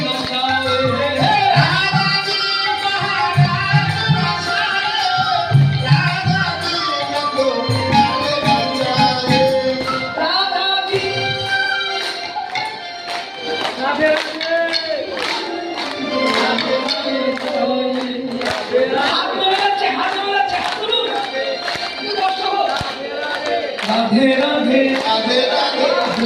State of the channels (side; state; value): both; identical; correlation 1.00